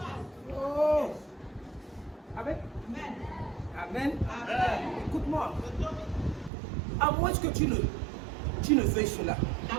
Amen. Écoute-moi. À moins que tu ne veuilles cela.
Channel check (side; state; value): left; drops out; at 6.5 s